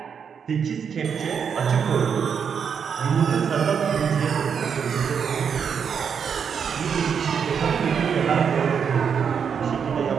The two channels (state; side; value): quieter; left; 7.0 dB